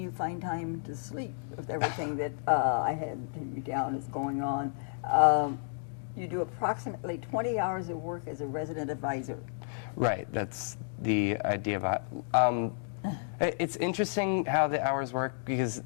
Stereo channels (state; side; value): silent; right; digital silence